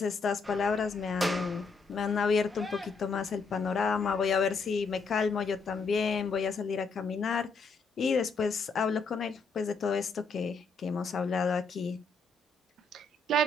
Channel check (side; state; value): right; quieter; 4.0 dB